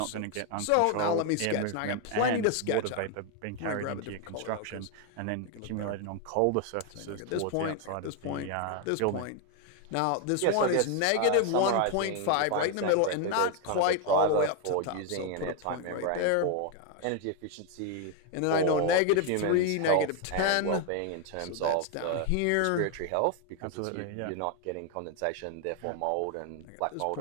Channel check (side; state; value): both; different; correlation 0.00